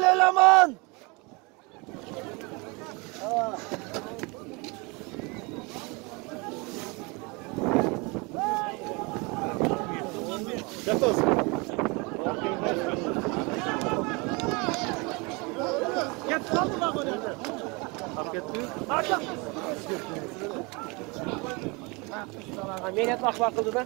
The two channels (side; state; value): left; quieter; 28.2 dB